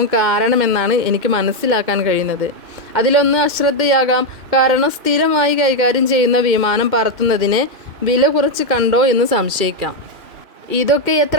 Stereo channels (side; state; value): left; late; 2.2 ms